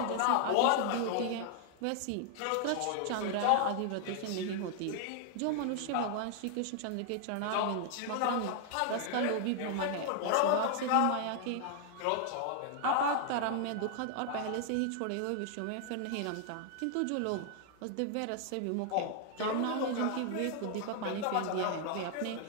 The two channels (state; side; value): different; both; correlation 0.00